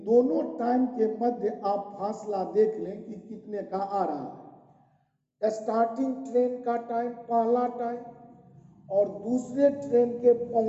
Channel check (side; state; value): both; identical; correlation 1.00